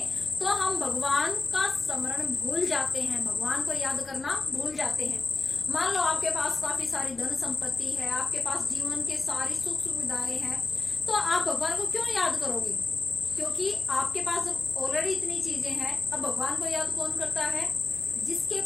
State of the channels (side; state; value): right; quieter; 3.6 dB